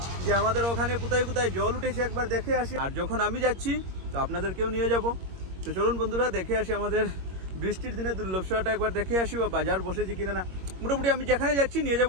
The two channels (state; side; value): late; left; 21 ms